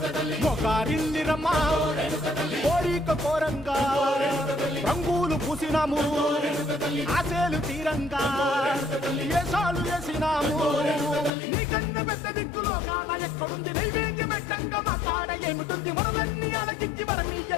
మొగారిల్లిరమ్మా కోరిక కోరంగా రంగులు పూసినాము ఆశలు తీరంగా ఏసాలు వేసినాము నీకన్నా పెద్ద దిక్కులో కాన ఎక్కడుంది నైవేద్యం పెట్టంగా మా కాడ ఏమిటుంది మనలన్నీ అలకిచ్చి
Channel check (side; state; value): right; drops out; at 11.3 s